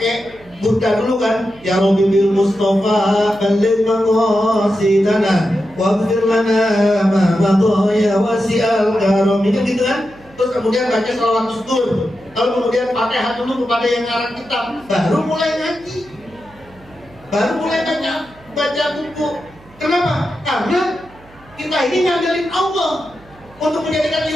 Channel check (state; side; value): noise; right; hum, 26 dB below the sound